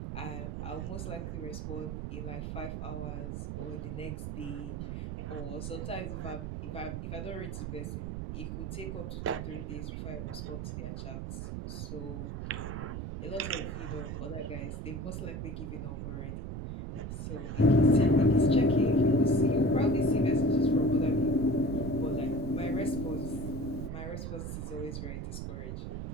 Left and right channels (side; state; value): right; noise; rumble, 5 dB below the sound